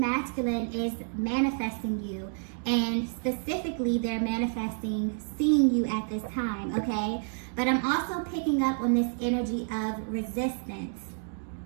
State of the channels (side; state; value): left; silent; 58 dB below the other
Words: is manifesting you. And specifically, they're manifesting seeing you at this time, okay? But I'm also picking up on this energy of resistance.